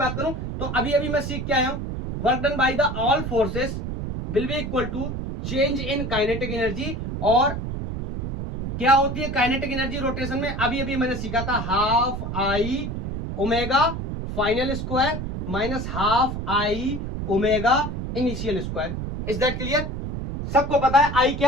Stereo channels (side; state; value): right; noise; rumble, 5 dB below the sound